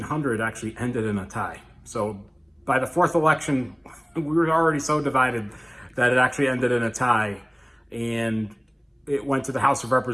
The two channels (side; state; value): both; identical; correlation 1.00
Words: actually ended in a tie. So by the 4th election, we were already so divided that it actually ended in a tie. And it went to the House of